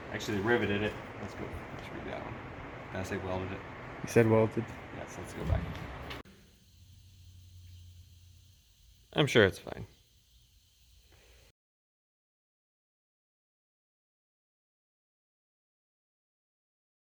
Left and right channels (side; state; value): both; identical; correlation 1.00